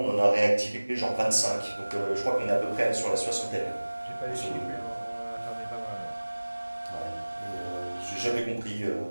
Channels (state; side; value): inverted; both; correlation -1.00